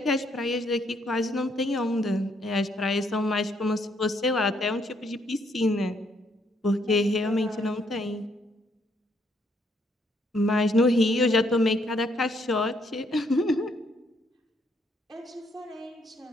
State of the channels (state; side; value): normal; both; correlation 0.71